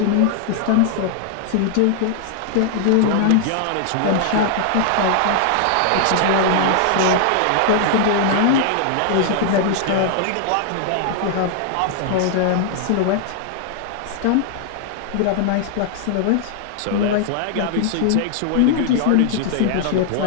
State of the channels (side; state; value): both; different; correlation -0.01